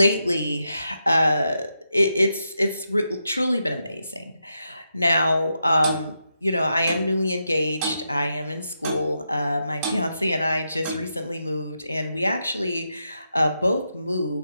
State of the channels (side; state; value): both; inverted; correlation -0.85